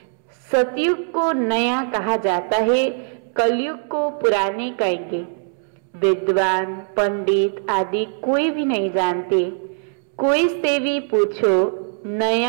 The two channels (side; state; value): left; silent; 65 dB below the other